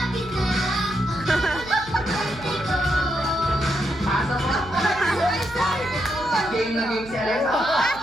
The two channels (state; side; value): noise; right; hum, 18 dB below the sound